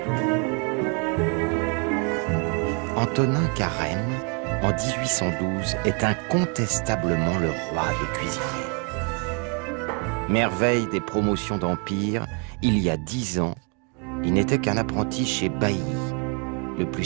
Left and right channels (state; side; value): quieter; left; 37.5 dB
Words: Antonin Carême, en 1812, est incontestablement le roi des cuisiniers. Merveille des promotions d'Empire, il y a 10 ans, il n'était qu'un apprenti chez Bailly, le plus